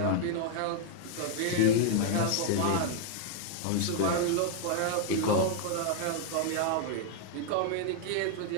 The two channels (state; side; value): different; both; correlation 0.00